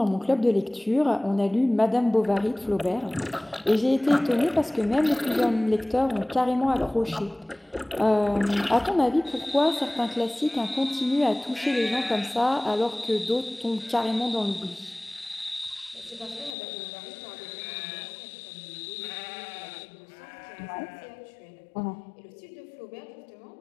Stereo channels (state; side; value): drops out; right; at 16.6 s